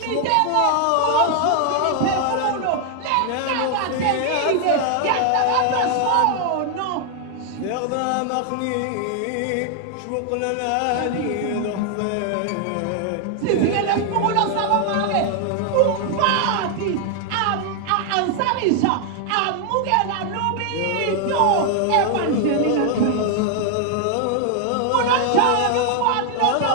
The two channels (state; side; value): different; both; correlation 0.00